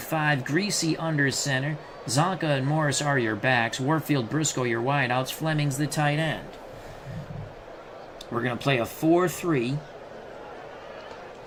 Greasy under center. Zonka and Morris are your backs. Warfield, Briscoe, your wideouts. Fleming's the tight end. We're going to play a 4-3.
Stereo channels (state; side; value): identical; both; correlation 1.00